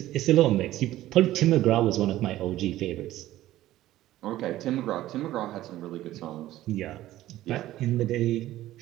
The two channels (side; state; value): left; quieter; 14.8 dB